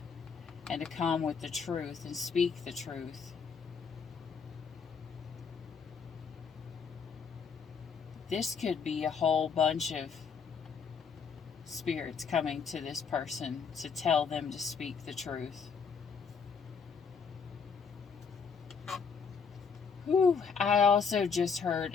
and to come with the truth and speak the truth. this could be a whole bunch of spirits coming to this person to tell them to speak the truth. Whew. I also just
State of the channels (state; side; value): quieter; right; 5.8 dB